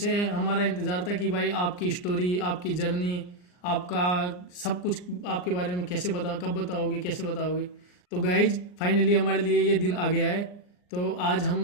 हमारा इंतज़ार था कि भाई आपकी स्टोरी, आपकी जर्नी, आपका सब कुछ आपके बारे में कैसे कब बताओगे, कैसे बताओगे। तो गाइज फाइनली हमारे लिए ये दिन आ गया है। तो आज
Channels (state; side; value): late; right; 39 ms